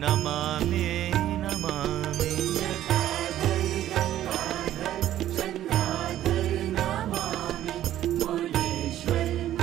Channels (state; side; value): quieter; left; 12.5 dB